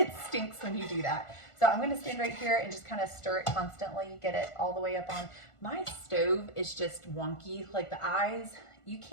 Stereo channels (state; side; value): late; right; 1.4 ms